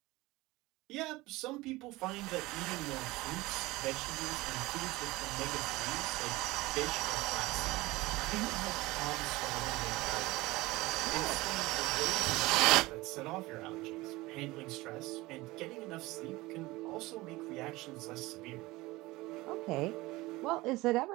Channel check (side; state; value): left; quieter; 20.4 dB